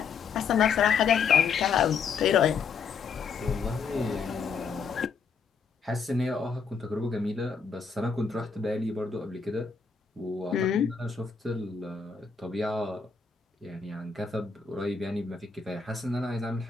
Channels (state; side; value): quieter; right; 5.6 dB